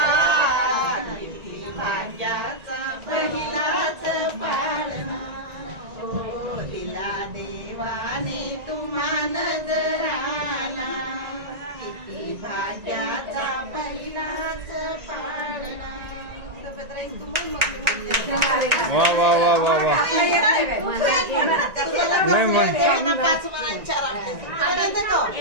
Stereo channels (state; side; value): late; left; 1.9 ms